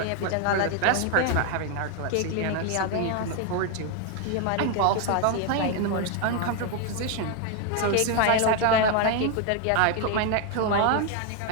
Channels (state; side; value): different; both; correlation 0.01